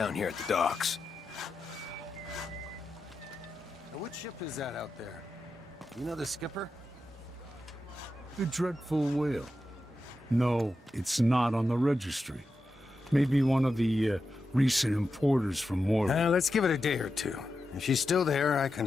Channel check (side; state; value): both; normal; correlation 0.89